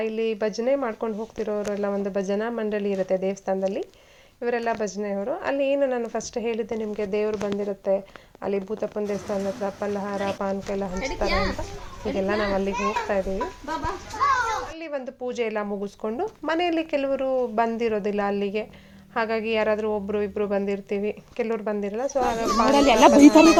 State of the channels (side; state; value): both; identical; correlation 1.00